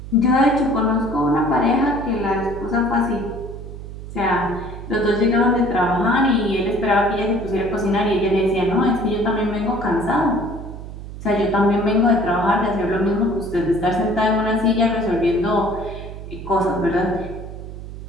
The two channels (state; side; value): noise; right; hum, 11 dB below the sound